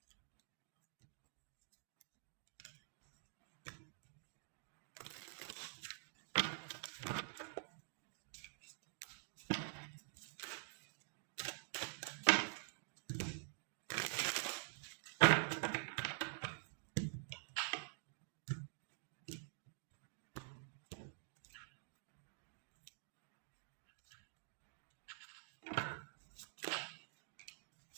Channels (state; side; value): silent; left; digital silence